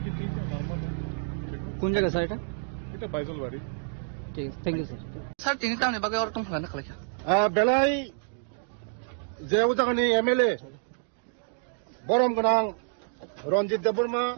ठीक है, नॉर्मल है। কোন জায়গা স্যার এটা? এটা বাইজলবাড়ি। ঠিক আছে, থ্যাংক ইউ স্যার। স্যার তিনি তামনি বাগে আর তুমি না খালাইকা বেলাই যে উজাগানি এমএলএ বরম গোনাं रंजित देबबर्मा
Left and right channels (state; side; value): silent; left; digital silence